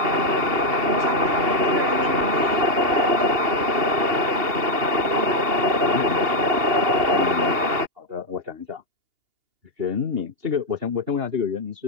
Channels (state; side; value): late; left; 2.8 ms